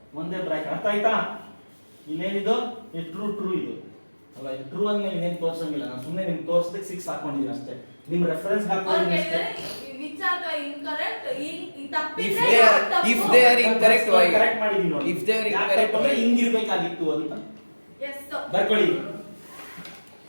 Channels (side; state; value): both; inverted; correlation -1.00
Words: ಒಂದೇ ಬ್ರಾಕೆಟ್. ಅರ್ಥ ಆಯ್ತಾ? ಇಲ್ಲೇನಿದು ಟ್ರೂ ಇದು ಅಲ್ಲ. ಇದು ಟ್ರೂ ಅಂದ್ಮೇಲೆ ಇನ್ನೇನು ತೋರ್ಸಂಗಿಲ್ಲ. ನಾನು ಸುಮ್ಮನೆ ನಿಮ್ಗೆ ತೋರ್ಸದಕ್ಕೆ 6 ಹಾಕೊಂಡಿದ್ದೀನಿ ಅಷ್ಟೇ. ನಿಮ್ ರೆಫರೆನ್ಸ್ ಹಾಕೊಂಡಿದ್ದೀನಿ ಅಷ್ಟೇ. Which are the incorrect? If they are incorrect, why? Correct ಮಾಡಿದೀನಿ ನೋಡಿ. If they are incorrect, why? ಹಿಂಗಿರ್ಬೇಕಾಗಿತ್ತು ಅಂತ Yes sir. ಬರ್ಕೊಳ್ಳಿ.